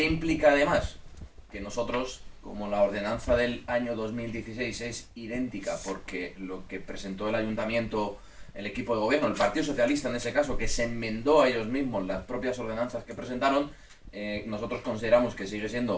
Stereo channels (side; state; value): both; identical; correlation 1.00